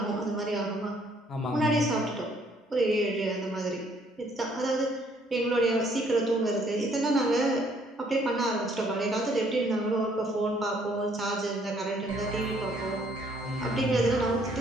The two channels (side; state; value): both; normal; correlation 0.64